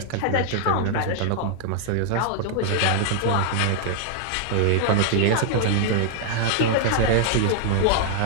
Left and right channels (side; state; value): both; different; correlation 0.00